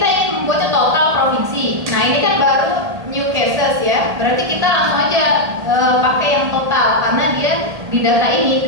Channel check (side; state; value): left; late; 1.8 ms